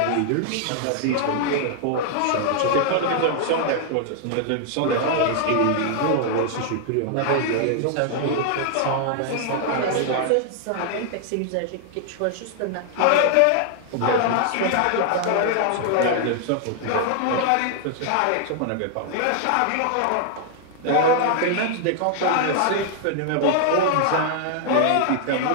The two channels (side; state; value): both; different; correlation 0.00